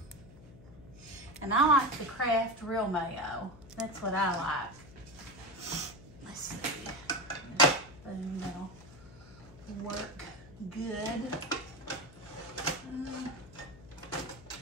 and I like the Kraft real mayo. That's what I like. Let's see. Boom, that'll work good.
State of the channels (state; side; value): noise; left; hum, 19 dB below the sound